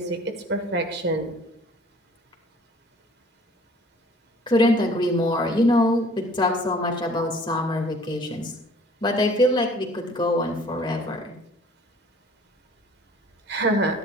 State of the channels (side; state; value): both; normal; correlation 0.52